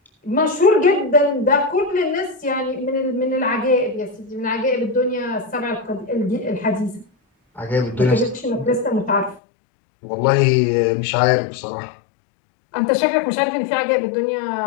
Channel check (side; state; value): right; drops out; at 9.4 s